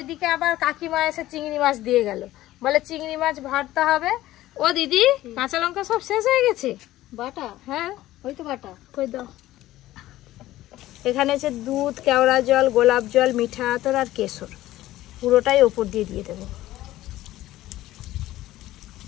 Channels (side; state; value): right; quieter; 15.4 dB